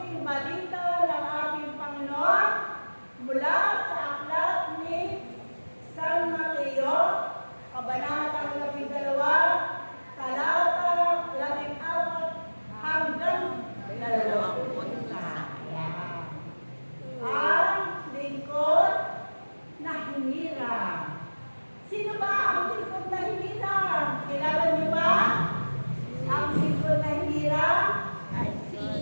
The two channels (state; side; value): inverted; both; correlation -1.00